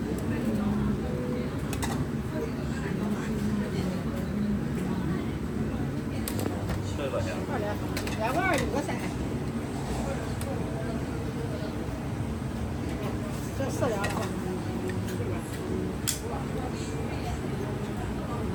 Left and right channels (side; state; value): both; identical; correlation 1.00